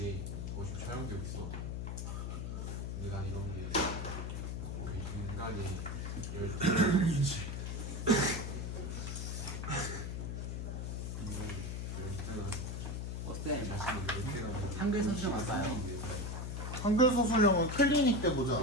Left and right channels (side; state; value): left; noise; hum, 4 dB below the sound